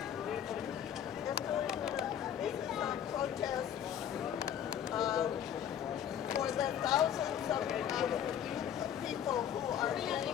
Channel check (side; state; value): right; quieter; 9.6 dB